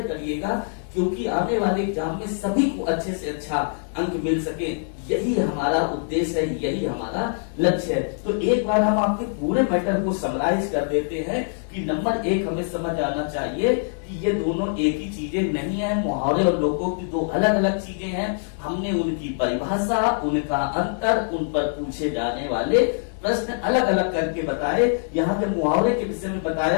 करिएगा, क्योंकि आने वाले एग्जाम में सभी को अच्छे से अच्छा अंक मिल सके। यही हमारा उद्देश्य है, यही हमारा लक्ष्य है। तो एक बार हम आपके पूरे मैटर को समराइज कर देते हैं कि नंबर 1 हमें समझ आना चाहिए कि ये दोनों एक ही चीजें नहीं है। मुहावरे और लोकोक्ति दो अलग अलग चीजें हैं। हमने उनकी परिभाषा, उनका अंतर, उन पर पूछे जाने वाले प्रश्न अलग अलग करके बताए। यहाँ के मुहावरे के विषय में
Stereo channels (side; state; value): right; silent; 63 dB below the other